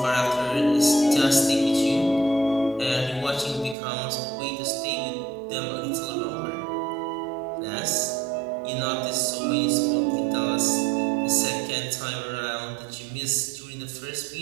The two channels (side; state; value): left; drops out; at 3.8 s